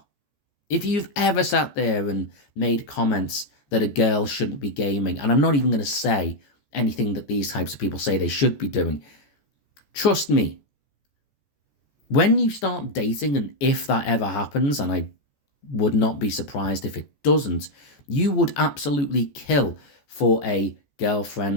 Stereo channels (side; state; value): right; late; 14 ms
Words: If you've ever sat there and made comments that a girl shouldn't be gaming, and I'm not even going to say anything that these types of people say they should be doing, trust me, when you start dating, and if that ever happens, and I would not be surprised if it doesn't, you would absolutely kill for a